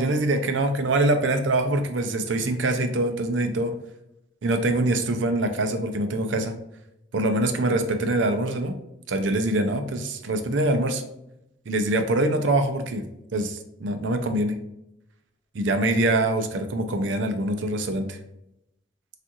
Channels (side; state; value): both; normal; correlation 0.30